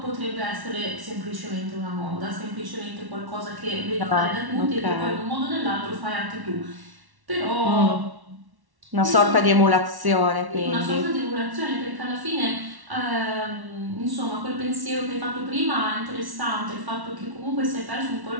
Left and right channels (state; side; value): late; left; 1.1 ms